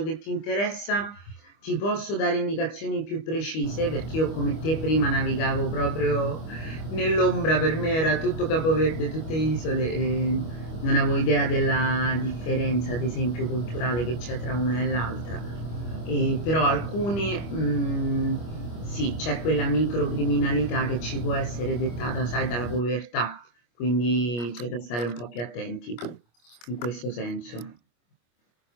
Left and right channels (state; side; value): late; right; 25 ms